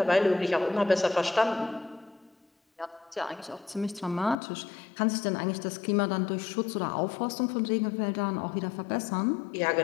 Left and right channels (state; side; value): drops out; right; at 4.4 s